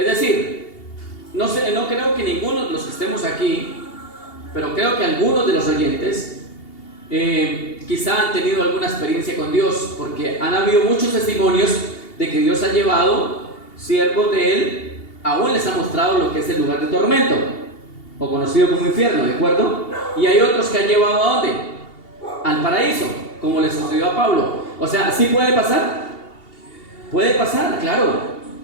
decir, no creo que ninguno de los que estemos aquí, pero creo que algunos de los oyentes quizá han tenido alguna experiencia con Dios, porque han habido muchos testimonios de que Dios ha llevado siervos de Él, aún les ha mostrado lo que es el lugar de tormento, o conocido como infierno, ¿de acuerdo? Y hay otros que han llevado ¿a dónde? Al paraíso, como le sucedió a Pablo. O sea, ¿sí puede pasar? Puede pasar, claro,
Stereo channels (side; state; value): right; late; 2.8 ms